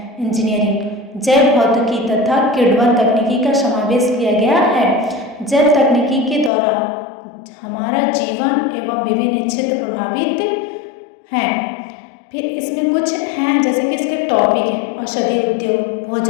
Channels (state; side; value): drops out; right; at 6.5 s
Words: इंजीनियरिंग, जैव भौतिकी तथा किण्वन तकनीकी का समावेश किया गया है। जैव तकनीकी के द्वारा हमारा जीवन एवं विभिन्न क्षेत्र प्रभावित हैं। फिर इसमें कुछ हैं जैसे कि इसके टॉपिक हैं औषधि उद्योग,